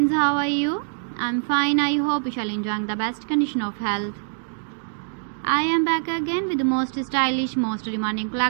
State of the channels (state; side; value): silent; left; digital silence